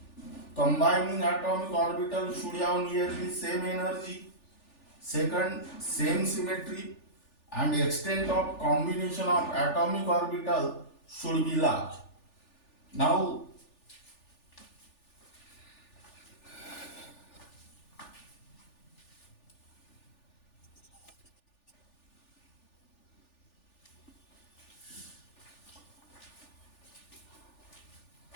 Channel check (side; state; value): right; late; 3.4 ms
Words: combining atomic orbital should have nearly same energy. Second, same symmetry, and extent of combination of atomic orbital should be large. Now,